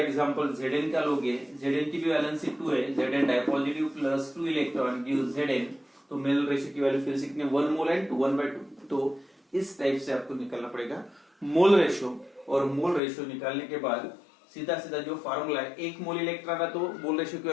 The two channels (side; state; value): right; drops out; at 13.0 s